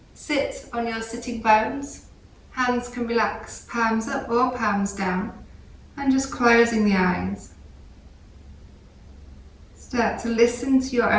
Sit on your sitting bones. Hands can relax, palms up or palms down, and just closing the eyes. Start to listen to your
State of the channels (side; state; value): both; identical; correlation 1.00